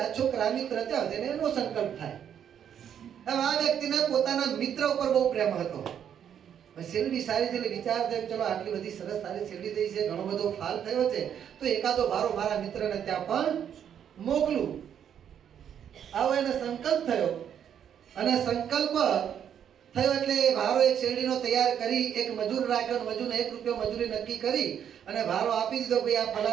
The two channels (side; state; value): left; quieter; 8.9 dB